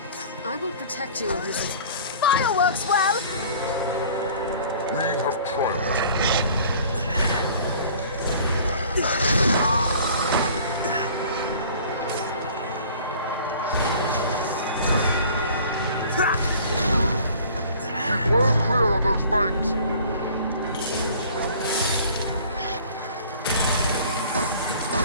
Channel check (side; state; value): both; inverted; correlation -0.49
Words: I will protect you, Elizabeth. Fireworks well! We have triumphed. Keep well clear of those banks!